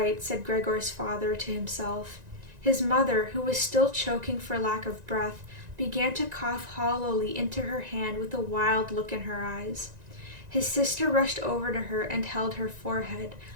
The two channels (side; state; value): left; late; 1.9 ms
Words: said Gregor's father to himself. His mother, who was still choking for lack of breath, began to cough hollowly into her hand with a wild look in her eyes. His sister rushed over to her and held her forehead.